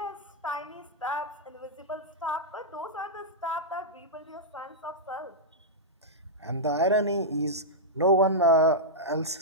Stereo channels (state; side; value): normal; both; correlation -0.09